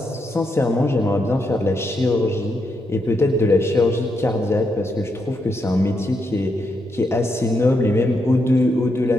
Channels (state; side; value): normal; both; correlation 0.81